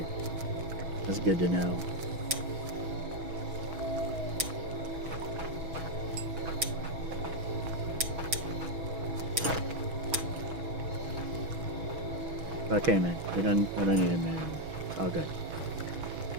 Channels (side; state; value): left; late; 6.1 ms